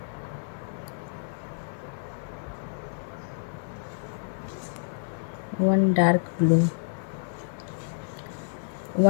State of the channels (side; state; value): right; silent; digital silence